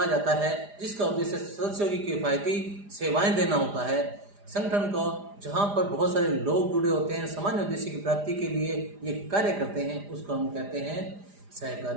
जाता है, जिसका उद्देश्य सदस्यों की किफायती सेवाएं देना होता है। संगठन को जहां पर बहुत सारे लोग जुड़े होते हैं, सामान्य उद्देश्य की प्राप्ति के लिए ये कार्य करते हैं, उसको हम कहते हैं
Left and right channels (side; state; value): left; late; 4.9 ms